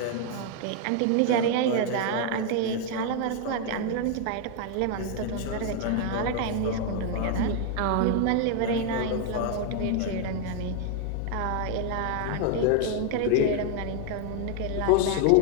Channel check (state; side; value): different; both; correlation 0.00